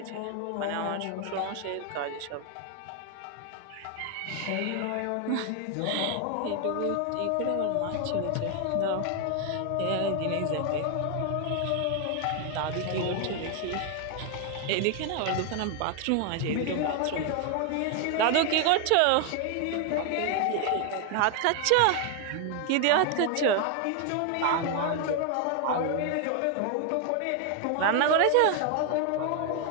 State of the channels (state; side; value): different; both; correlation 0.00